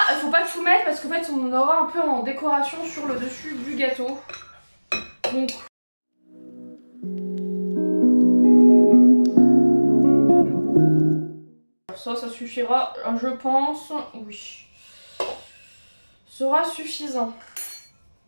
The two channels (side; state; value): both; inverted; correlation -1.00